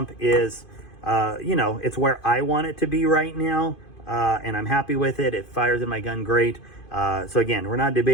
is, you know, it's where I want it to be right now. And I'm happy with it. It fires in my gun great. So again, we're not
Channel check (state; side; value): late; right; 2.5 ms